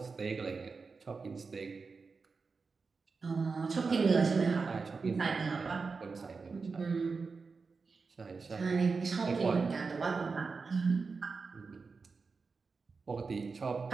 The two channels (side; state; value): left; quieter; 4.6 dB